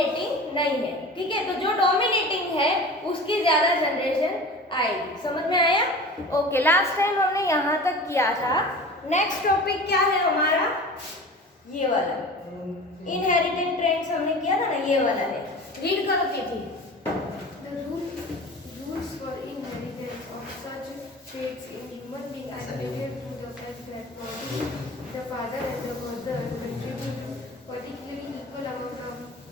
नहीं है, ठीक है. तो जो डोमिनेटिंग है उसकी ज्यादा जनरेशन आएगी. समझ में आया? ओके, लास्ट टाइम हमने यहाँ तक किया था. नेक्स्ट टॉपिक क्या है हमारा? ये वाला इनहेरिटेड ट्रेंड्स हमने किया था ना, ये वाला है. रीड करो तिथि. The rules for inheritance of such traits in human beings are related to the fact that both the father and the mother contribute particularly equal amount of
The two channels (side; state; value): both; normal; correlation 0.37